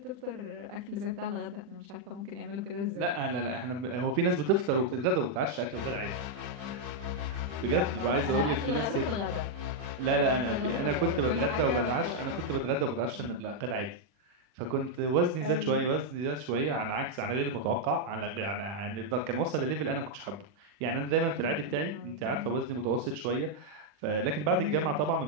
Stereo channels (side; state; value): left; late; 40 ms